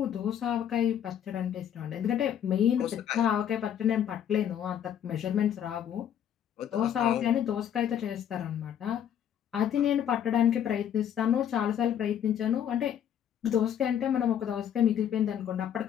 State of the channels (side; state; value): right; quieter; 9.5 dB